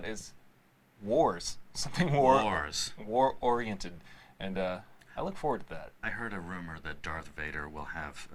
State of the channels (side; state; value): both; identical; correlation 1.00